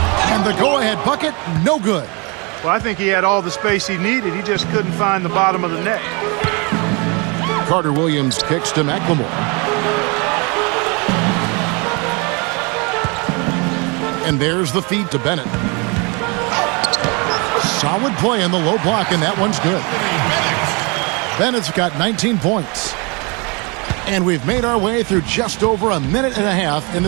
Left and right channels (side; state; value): left; quieter; 30.2 dB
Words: the go-ahead bucket, no good. Well, I think he had all the space he needed. He just couldn't find the bottom of the net. Carter Williams kicks to McLemore. And there's the feed to Bennett. Solid play in the low block, and that one's good. Bennett's got 19 points. And we've made our way through just over a minute and a half in